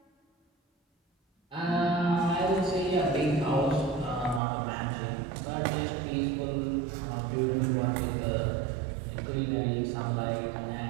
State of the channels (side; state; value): left; drops out; at 4.4 s